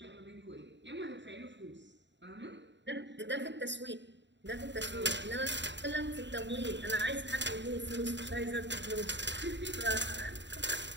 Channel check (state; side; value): late; left; 0.52 ms